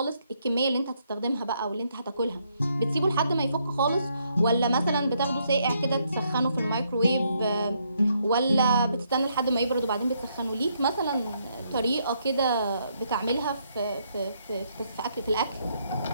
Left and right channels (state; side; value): inverted; both; correlation -0.74